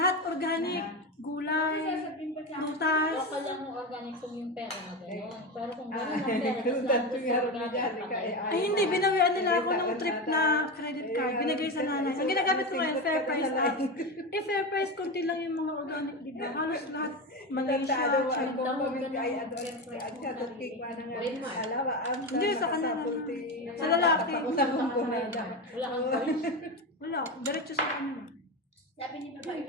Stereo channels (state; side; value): normal; both; correlation 0.19